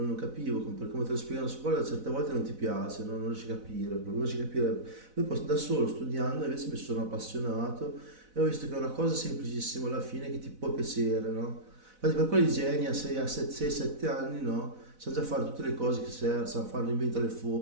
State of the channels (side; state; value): left; late; 4.0 ms